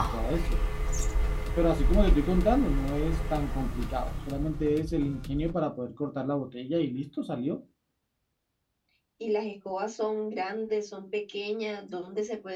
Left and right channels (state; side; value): identical; both; correlation 1.00